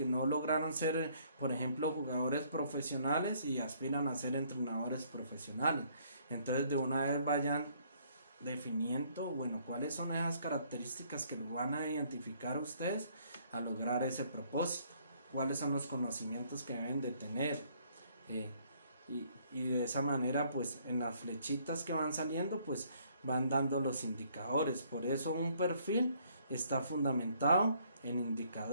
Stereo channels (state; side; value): inverted; both; correlation -0.64